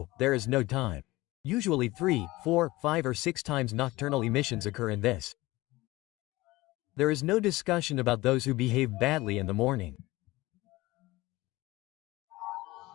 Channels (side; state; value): right; quieter; 19.7 dB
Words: there is no time. Usually 3, 4, 5 or 6 times nocturnal emissions occur in this. There is no discussion about those who behave badly in the morning.